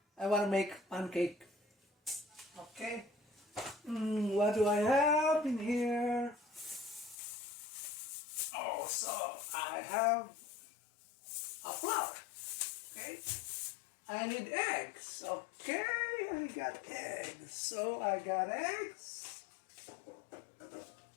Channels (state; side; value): drops out; right; at 7.2 s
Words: make pancake. Okay. What do I have in here? Oh, so I have a flour. Okay. I need eggs. Okay, I got eggs. So I got eggs.